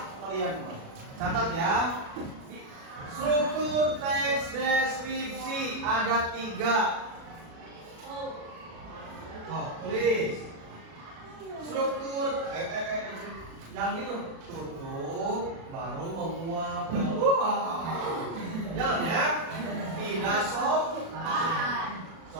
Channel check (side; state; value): left; late; 36 ms